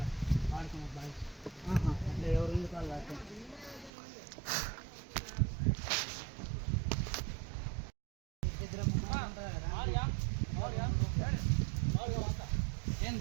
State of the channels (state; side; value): drops out; left; at 3.9 s